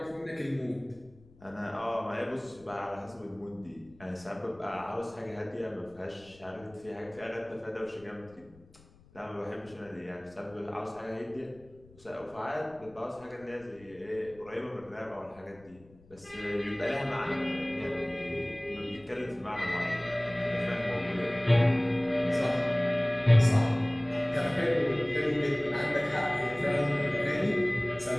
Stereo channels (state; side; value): noise; left; rumble, 26 dB below the sound